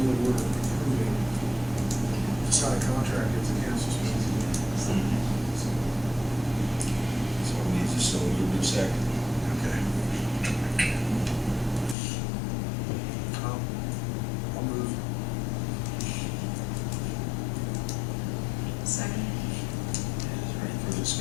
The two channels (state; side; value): drops out; right; at 12.0 s